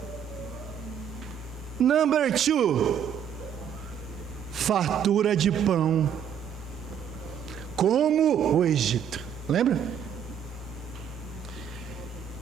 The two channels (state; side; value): quieter; left; 8.5 dB